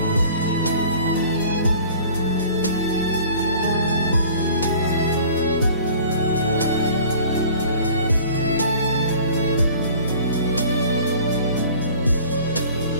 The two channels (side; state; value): both; inverted; correlation -0.47